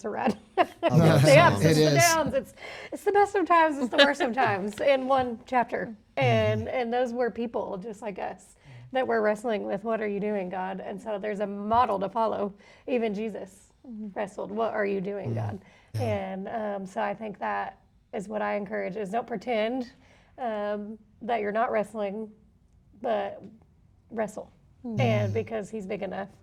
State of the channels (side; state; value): both; identical; correlation 1.00